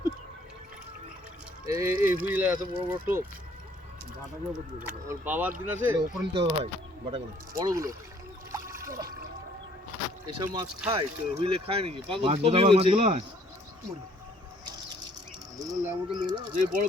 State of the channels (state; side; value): normal; both; correlation 0.61